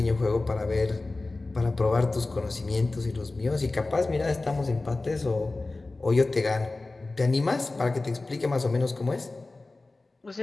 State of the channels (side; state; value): right; quieter; 3.3 dB